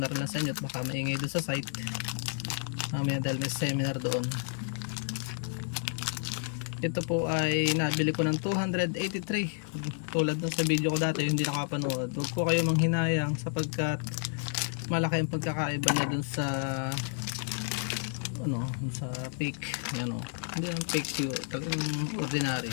na rin lang sa inyo at baka maingay doon sa site mamaya dahil may seminar doon. Ito po ay nabili ko ng 283. Tulad ng sa video ko dati, hindi nakapanood, huwag po kayo manghinayang sapagkat malaki ang pagkakaiba niya dun sa sa fake. Yan o, hindi ang fake siguro, talagang ordinary.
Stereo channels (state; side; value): silent; right; 57 dB below the other